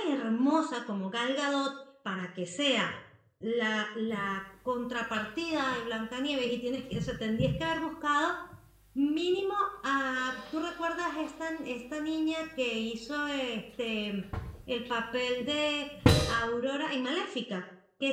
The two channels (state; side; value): identical; both; correlation 1.00